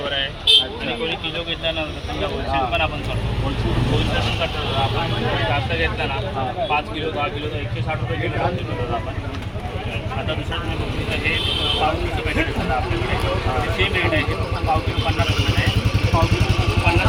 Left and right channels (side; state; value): both; identical; correlation 1.00